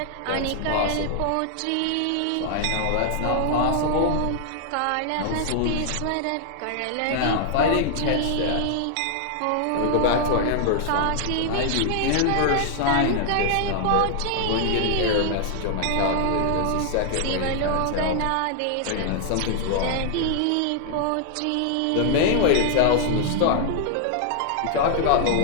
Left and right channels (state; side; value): different; both; correlation 0.00